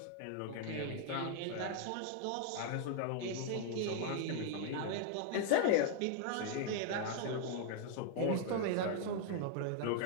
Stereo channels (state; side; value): different; both; correlation 0.00